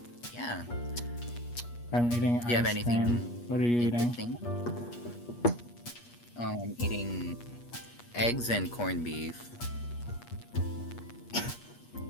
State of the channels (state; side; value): late; right; 8.4 ms